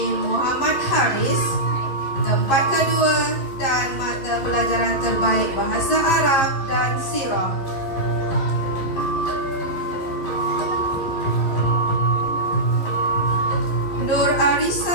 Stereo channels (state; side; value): late; right; 11 ms